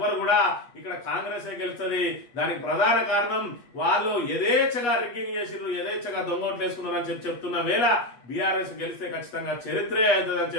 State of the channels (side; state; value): right; late; 8.3 ms